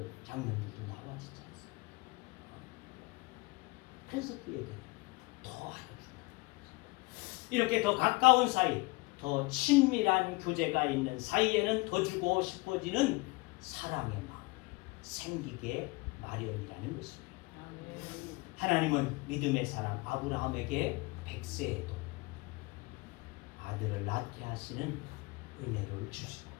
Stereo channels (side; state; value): right; quieter; 24.5 dB